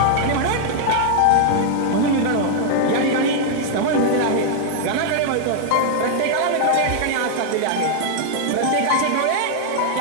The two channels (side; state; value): both; different; correlation -0.01